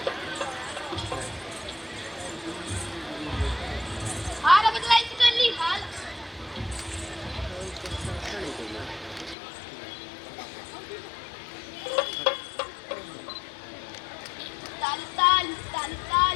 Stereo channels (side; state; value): right; drops out; at 9.3 s